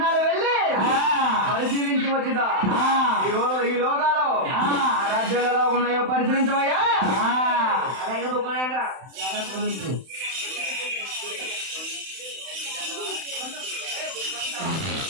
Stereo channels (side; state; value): left; late; 31 ms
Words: వెళ్ళి పరిశీలించి వచ్చిదా ఈ లోకాలు ఆ రాజ్యాలు ఎలా ఉన్నాయో పరిశీలించవయ్యా. అలాగే బుక్కునేగా.